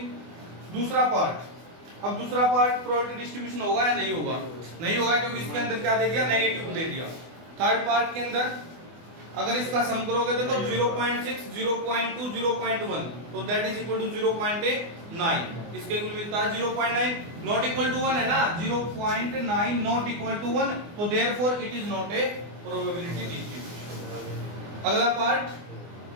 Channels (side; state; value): left; late; 24 ms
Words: दूसरा पार्ट, अब दूसरा पार्ट प्रोबेबिलिटी डिस्ट्रीब्यूशन होगा या नहीं होगा, नहीं होगा क्योंकि इसके अंदर क्या दे दिया, नेगेटिव दे दिया। थर्ड पार्ट के अंदर अगर इसका सम करोगे तो 0.6 0.2 0.1 तो दैट इज इक्वल टू 0.9, इसके इक्वल मिलता है 0.9, नॉट इक्वल टू 1 है ना, 0.9 नॉट इक्वल टू 1, तो therefore it is not a probability distribution. अगला पार्ट